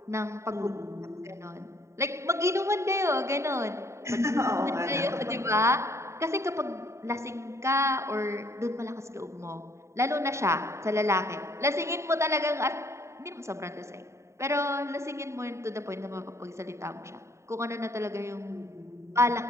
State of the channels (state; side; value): late; left; 0.14 ms